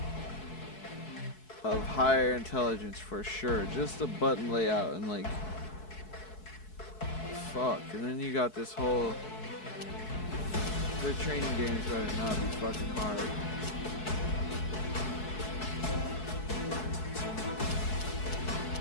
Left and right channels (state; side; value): late; right; 4.6 ms